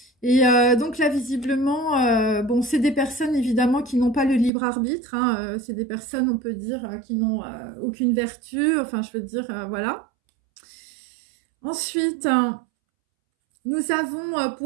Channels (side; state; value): left; drops out; at 4.5 s